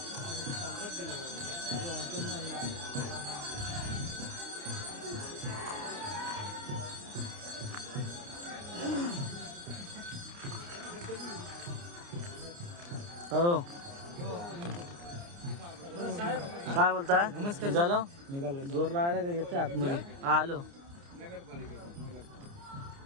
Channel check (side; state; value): left; late; 29 ms